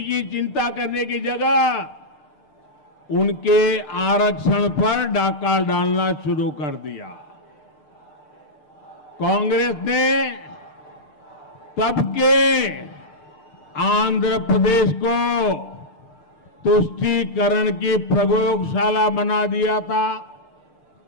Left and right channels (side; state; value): right; late; 6.7 ms